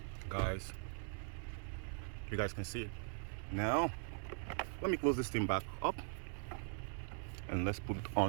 Guys, you guys can see it. Now let me close this thing back up and let's put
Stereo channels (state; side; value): silent; left; 50 dB below the other